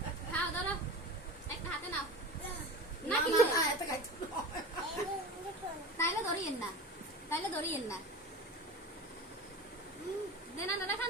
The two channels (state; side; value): normal; both; correlation 0.32